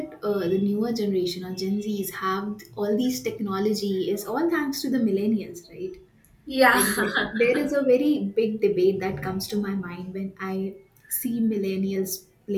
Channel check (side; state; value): both; identical; correlation 1.00